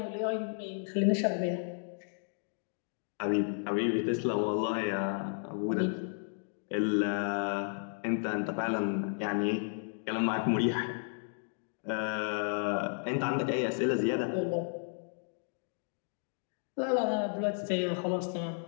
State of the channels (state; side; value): silent; right; 56 dB below the other